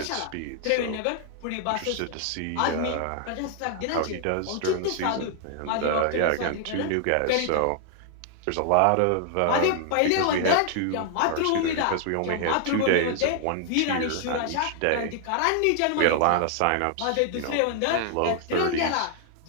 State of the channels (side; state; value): both; different; correlation 0.00